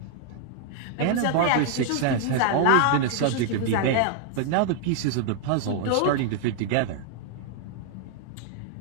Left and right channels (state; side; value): different; both; correlation 0.00